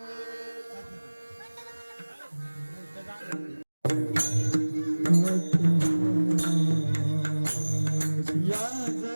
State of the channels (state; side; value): inverted; both; correlation -1.00